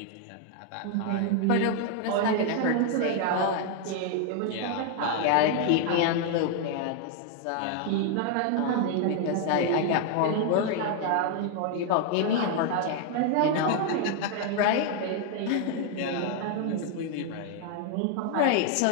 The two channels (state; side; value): different; both; correlation 0.00